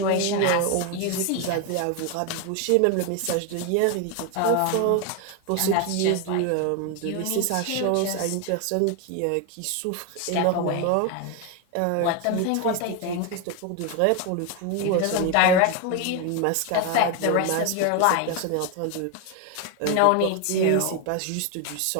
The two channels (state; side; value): different; both; correlation 0.01